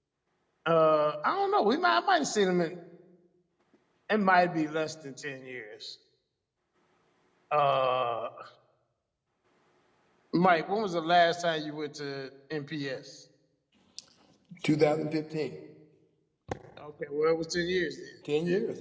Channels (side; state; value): both; identical; correlation 1.00